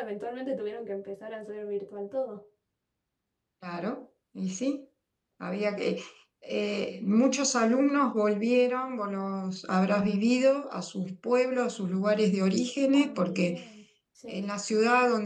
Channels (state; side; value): identical; both; correlation 1.00